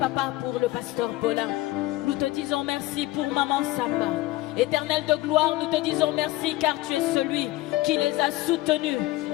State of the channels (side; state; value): right; quieter; 17.9 dB